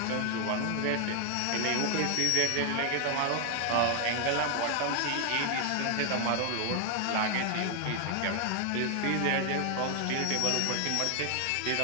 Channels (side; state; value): both; different; correlation 0.00